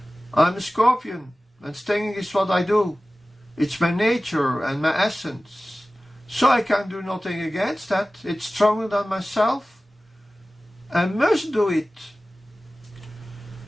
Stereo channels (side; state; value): both; normal; correlation 0.97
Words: "I'm a scorpion, and stinging is what I do. It's my nature and my essence. So I can do nothing against that. It's stronger than myself. and must do it.